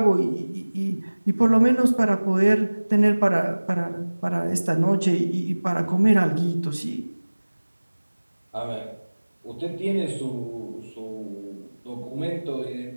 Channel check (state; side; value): inverted; both; correlation -1.00